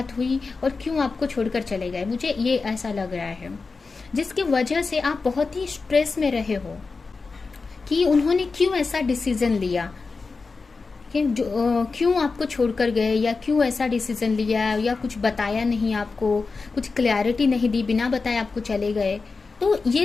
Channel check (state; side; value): quieter; right; 4.3 dB